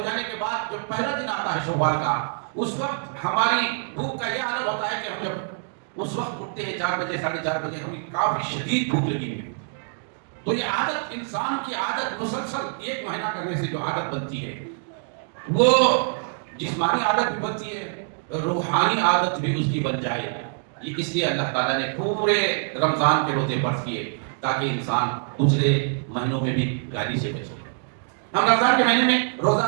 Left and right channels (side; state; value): left; silent; 62 dB below the other